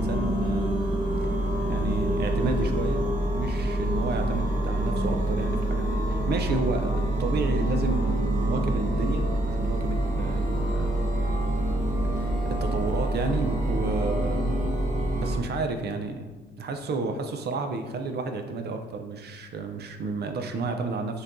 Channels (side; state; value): both; normal; correlation 0.72